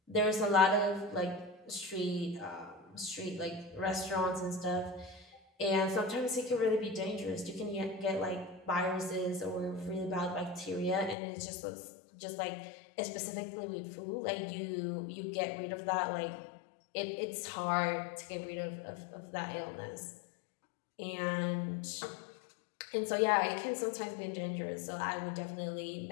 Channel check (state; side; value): drops out; right; at 11.2 s